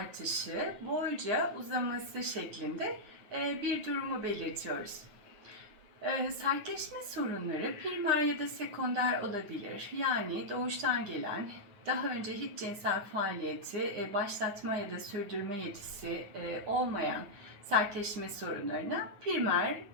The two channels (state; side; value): late; left; 9.3 ms